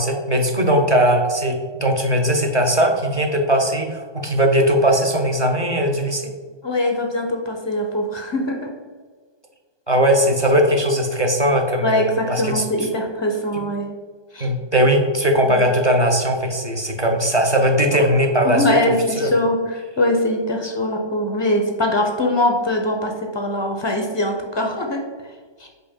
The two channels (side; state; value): right; late; 1.2 ms